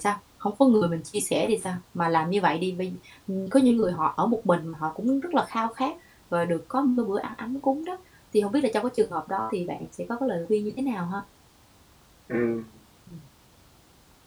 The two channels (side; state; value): both; identical; correlation 1.00